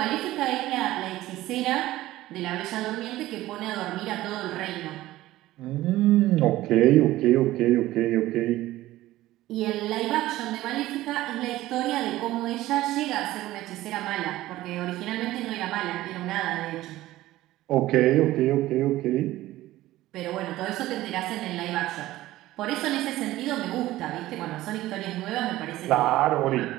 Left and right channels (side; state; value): left; quieter; 16.1 dB